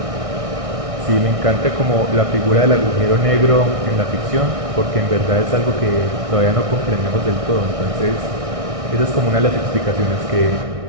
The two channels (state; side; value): late; left; 1.6 ms